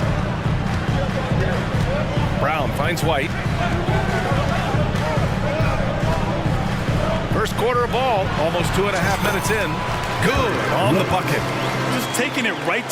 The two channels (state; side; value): identical; both; correlation 1.00